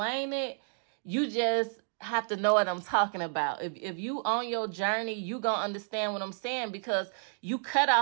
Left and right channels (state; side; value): silent; left; digital silence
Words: it. You just have to know what I'm talking about. If you on your journey, you gonna understand what I'm saying, because you cut